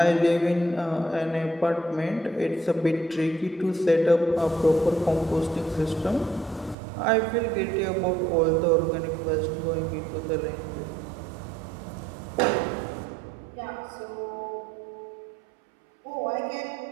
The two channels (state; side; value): drops out; left; at 6.8 s